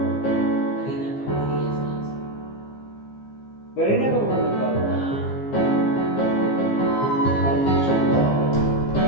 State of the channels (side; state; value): right; late; 15 ms